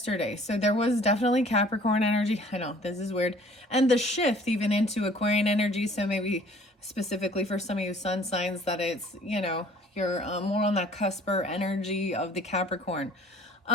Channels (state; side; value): normal; both; correlation 0.53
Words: So there was definitely Capricorn energy. I know, this is weird. And the shift even into Aquarian energy. So maybe specifically for some of you sun signs that it's, you're more on that cusper energy of the Capricorn.